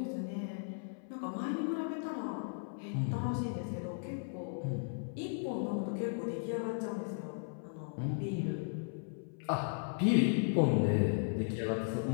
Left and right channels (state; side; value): silent; right; 54 dB below the other